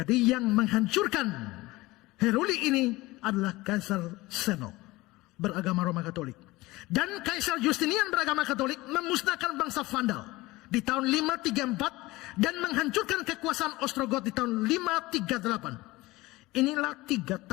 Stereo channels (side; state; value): right; quieter; 20.1 dB